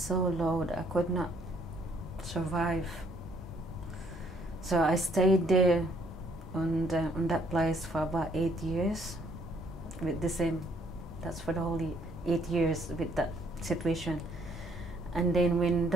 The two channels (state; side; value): normal; both; correlation 0.65